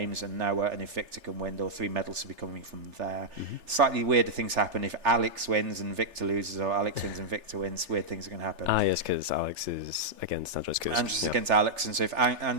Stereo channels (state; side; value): late; left; 3.4 ms